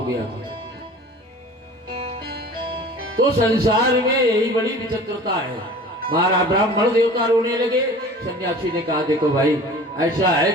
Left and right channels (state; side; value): normal; both; correlation 0.42